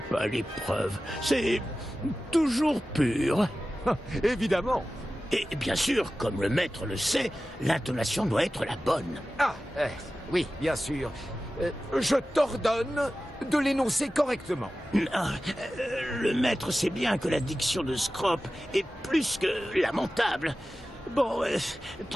à l'épreuve. C'est toujours pur. Évidemment. Et bien sûr, comme le maître le sait, l'intonation doit être la bonne. Ah, oui, bien sûr. Je t'ordonne de l'énoncer correctement. Le maître sait bien que la diction de Scrop est plus que lamentable. Bon,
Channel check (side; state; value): both; normal; correlation 0.95